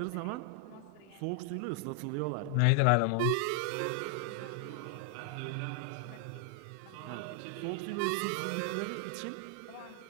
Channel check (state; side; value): different; both; correlation 0.00